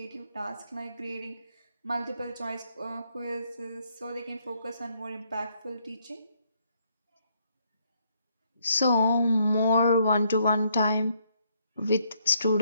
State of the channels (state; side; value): inverted; both; correlation -0.71